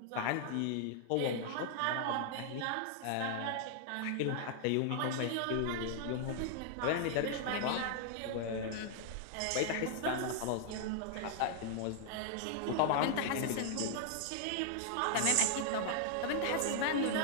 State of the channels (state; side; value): different; both; correlation 0.00